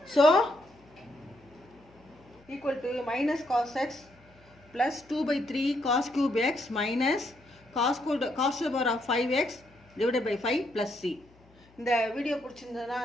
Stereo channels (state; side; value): noise; left; hum, 28 dB below the sound